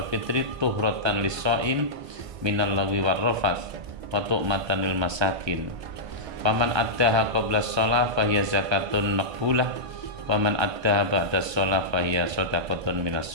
fitri tuhratan lis-shaim minal lagwi war-rafath wa tu'matan lil masakin. Faman addaha qabla shalah fahiya zakatun maqbulah wa man addaha ba'da shalah fahiya shadaqatun minas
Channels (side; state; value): left; late; 1.2 ms